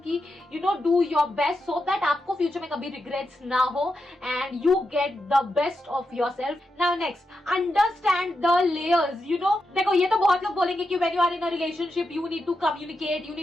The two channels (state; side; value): normal; both; correlation 0.87